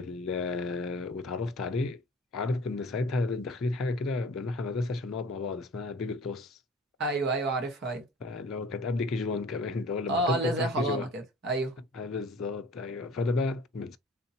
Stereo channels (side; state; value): both; normal; correlation 0.46